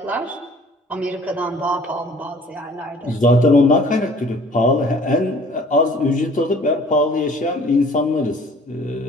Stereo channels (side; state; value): both; normal; correlation 0.52